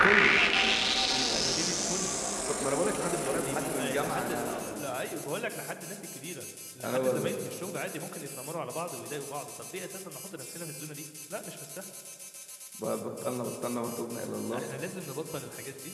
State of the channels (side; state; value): both; identical; correlation 1.00